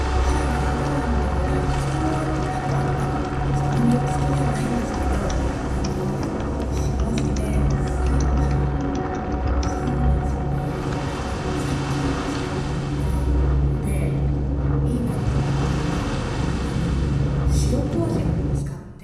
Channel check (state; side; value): identical; both; correlation 1.00